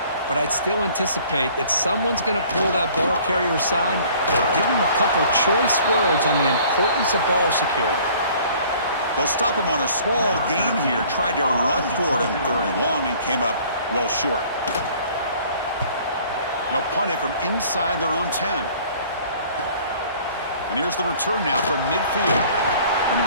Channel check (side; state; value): both; inverted; correlation -0.53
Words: But I'd still anticipate that someone's going to pull that ball carrier aside, give him a couple choice words on the importance of ball security. They'll stop him on a small gain here. Tried to run for it in 3rd and long and came up well short. They'll punt it from inside their own 10. And here's the return now from midfield. And